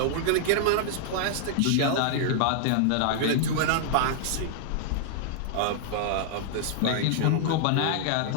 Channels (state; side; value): different; both; correlation -0.01